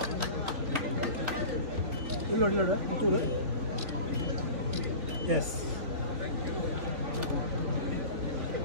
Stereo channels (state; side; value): late; left; 3.4 ms